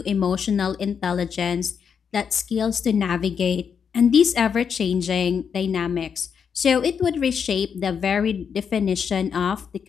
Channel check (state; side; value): quieter; right; 6.9 dB